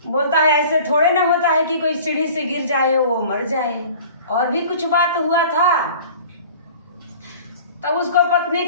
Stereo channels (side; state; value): both; inverted; correlation -0.45